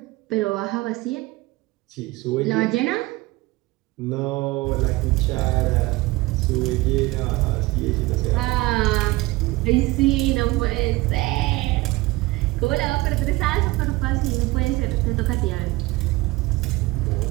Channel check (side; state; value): left; quieter; 20.8 dB